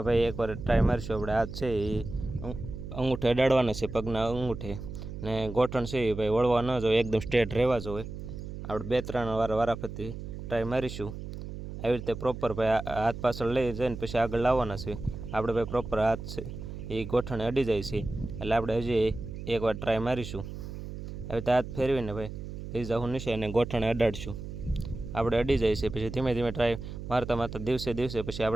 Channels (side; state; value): right; noise; hum, 9 dB below the sound